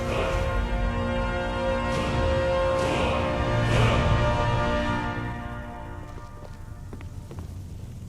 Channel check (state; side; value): identical; both; correlation 1.00